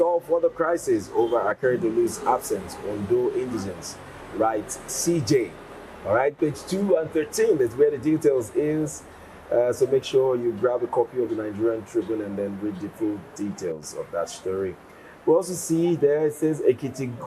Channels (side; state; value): both; identical; correlation 1.00